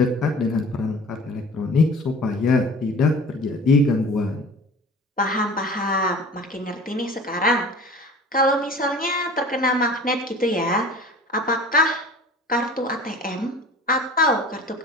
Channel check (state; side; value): normal; both; correlation 0.42